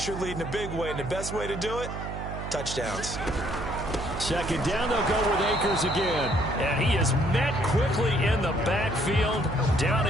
your lead in a big way. And the best way to do it, touchdowns. Second down, they'll go with Akers again. And he is met quickly in the backfield. Down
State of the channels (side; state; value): right; noise; hum, 7 dB below the sound